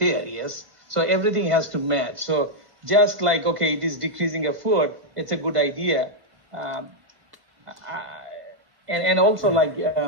Yes, so everything has to match. So just like, okay, it is decreasing a foot, it's a good idea. And also like,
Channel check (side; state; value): left; late; 2.0 ms